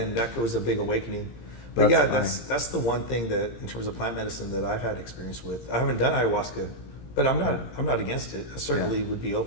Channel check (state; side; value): late; right; 17 ms